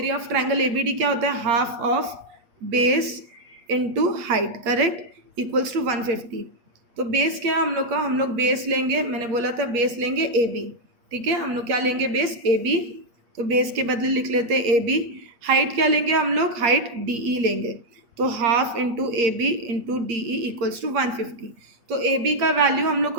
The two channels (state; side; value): late; left; 8.5 ms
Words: of triangle A B D क्या होता है? Half of base into height, correct, equals to 150। तो बेस क्या है हम लोग का? हम लोग बेस लेंगे, मैंने बोला था बेस लेंगे ए बी, ठीक है। हम लोग क्या लेंगे? Base A B. तो बेस के बदले लिख लेते हैं ए बी। हाइट क्या लेंगे हम लोग? हाइट डी ई लेंगे। तो half into A B into D E equals to 150। तो ए बी का वैल्यू हम लोग